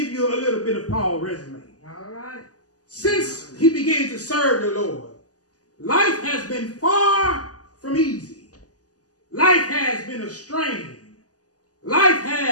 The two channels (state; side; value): late; right; 0.67 ms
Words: you a little bit of Paul's resume. All right. Since he began to serve the Lord, life has been far from easy. Life has been a strain. Life